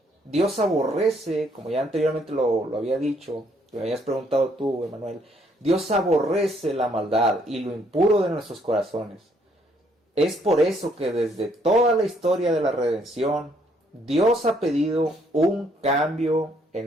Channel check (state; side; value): normal; both; correlation 0.68